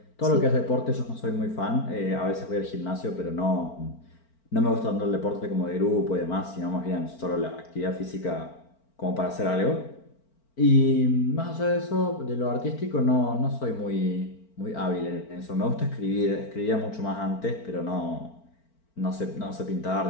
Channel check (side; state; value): right; late; 4.4 ms